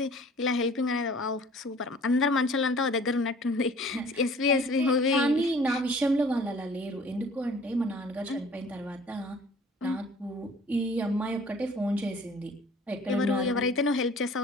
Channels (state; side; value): normal; both; correlation 0.50